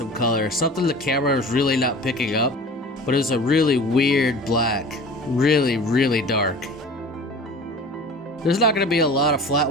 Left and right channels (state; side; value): normal; both; correlation 0.40